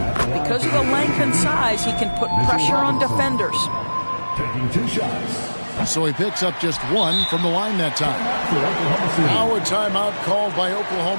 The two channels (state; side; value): inverted; both; correlation -1.00